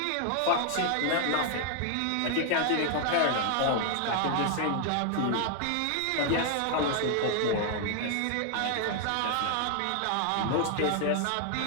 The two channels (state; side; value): different; both; correlation 0.00